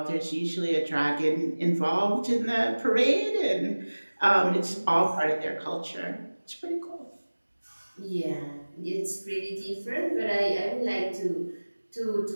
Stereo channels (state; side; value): inverted; both; correlation -1.00